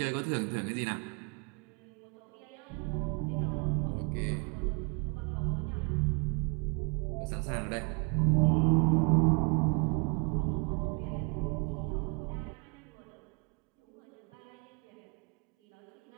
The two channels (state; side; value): quieter; left; 35.6 dB